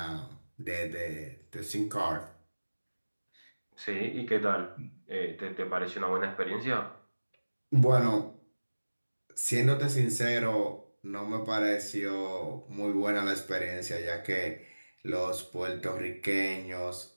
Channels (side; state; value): both; inverted; correlation -1.00